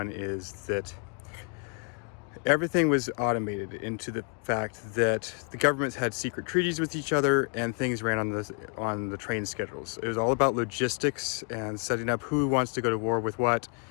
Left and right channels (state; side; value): quieter; right; 39.4 dB